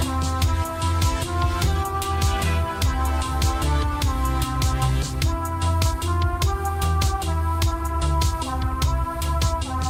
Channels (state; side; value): identical; both; correlation 1.00